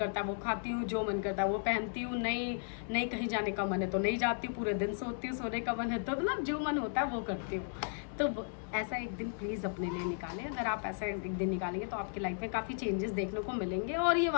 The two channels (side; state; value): right; silent; digital silence